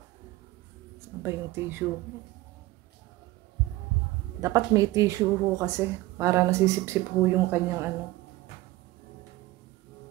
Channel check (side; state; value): left; quieter; 18.2 dB